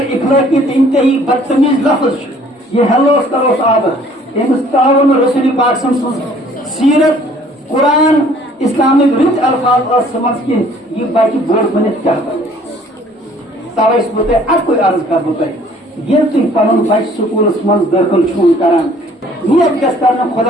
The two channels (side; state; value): both; normal; correlation 0.57